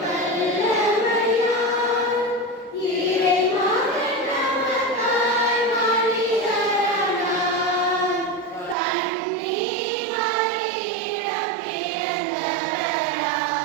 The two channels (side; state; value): left; drops out; at 8.8 s